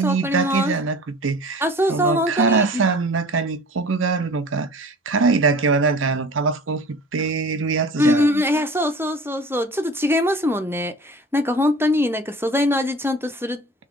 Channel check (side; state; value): both; normal; correlation 0.42